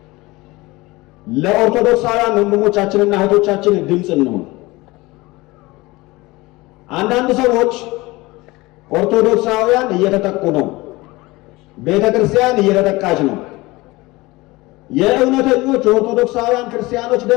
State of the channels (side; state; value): right; quieter; 21.5 dB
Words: ለኦርቶዶክሳውያን ወንድሞቻችንና እህቶቻችን ድምፅ እንሆን። አንዳንድ ሰዎች ኦርቶዶክሳውያን እየተጠቁ ነው፣ ቤተ ክርስቲያን እየተጠቃች ነው፣ የእውነተኞች የኦርቶዶክሳውያን ክርስቲያኖች